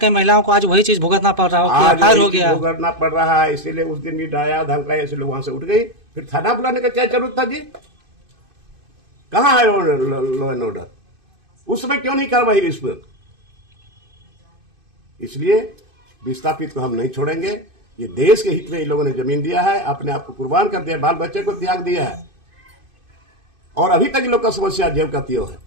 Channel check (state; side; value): late; left; 2.5 ms